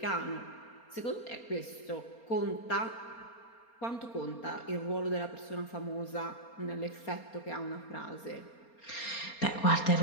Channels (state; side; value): late; right; 4.3 ms